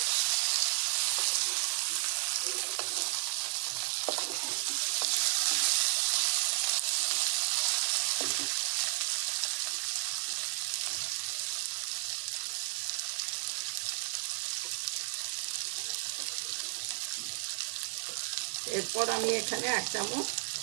এরপর আমি এখানে 1 চামচ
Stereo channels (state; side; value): silent; left; digital silence